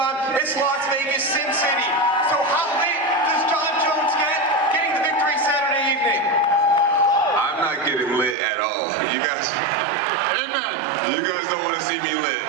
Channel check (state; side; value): drops out; left; at 8.3 s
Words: It's Las Vegas, Sin City. So how late does Jon Jones get getting the victory Saturday evening? I'm not getting lit at all. You guys don't want to see me lit.